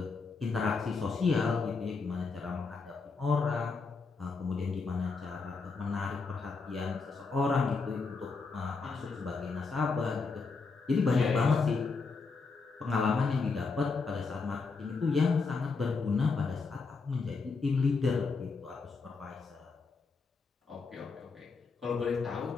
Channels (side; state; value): right; quieter; 4.5 dB